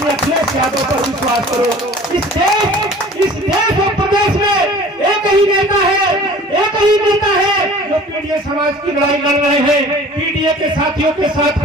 अखिलेश यादव पर विश्वास करो। इस देश और प्रदेश में एक ही नेता है, एक ही नेता है जो पीडीए समाज की लड़ाई लड़ रहे हैं, पीडीए के साथियों के साथ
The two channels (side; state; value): both; normal; correlation 0.45